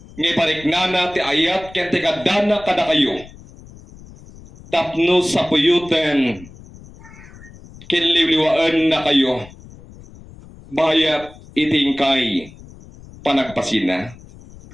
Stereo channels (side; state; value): left; noise; rumble, 20 dB below the sound